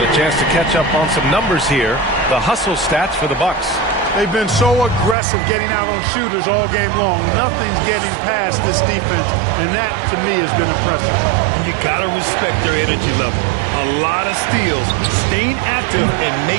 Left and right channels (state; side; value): drops out; left; at 5.2 s